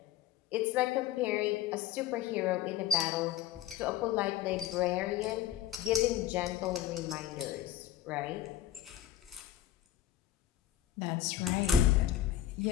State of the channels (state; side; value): quieter; right; 11.7 dB